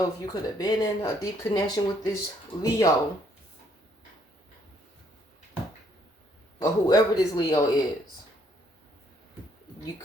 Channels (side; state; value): both; normal; correlation 0.68